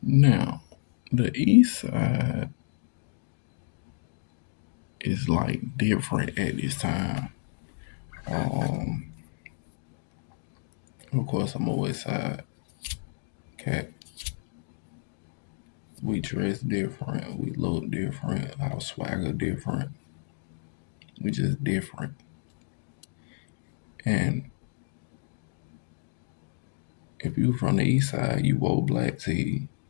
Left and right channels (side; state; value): right; silent; digital silence